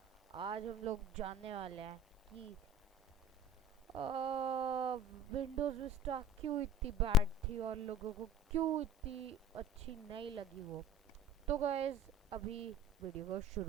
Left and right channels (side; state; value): both; normal; correlation 0.44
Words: आज हम लोग जानने वाले हैं कि विंडोज़ विस्टा क्यों इतनी बैड थी और लोगों को क्यों इतनी अच्छी नहीं लगी वो। तो गाइस अभी वीडियो को